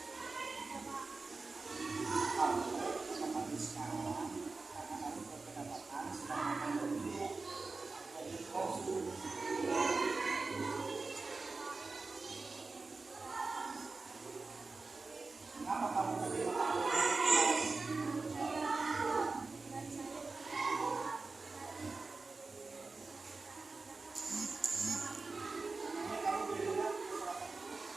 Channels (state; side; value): quieter; left; 3.9 dB